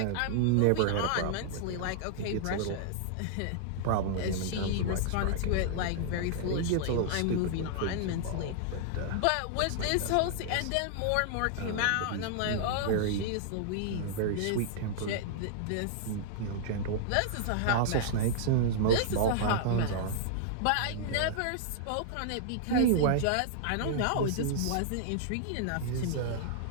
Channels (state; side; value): different; both; correlation -0.01